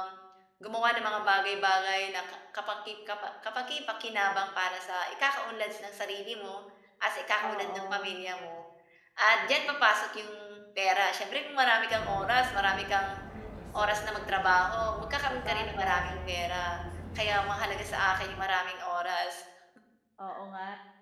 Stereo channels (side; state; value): both; identical; correlation 1.00